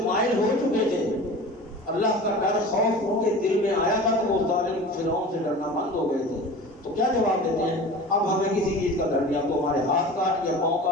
مائل ہو چکے تھے، اللہ کا ڈر خوف ان کے دل میں آیا تھا، تو وہ ظالم فرعون سے ڈرنا بند ہو گئے تھے۔ تو کیا جواب دیتے ہیں؟ اب ہمیں کسی چیز کا ڈر نہیں، اب تو ہمارے ہاتھ کاٹ یا پاؤں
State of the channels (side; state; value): both; normal; correlation 0.37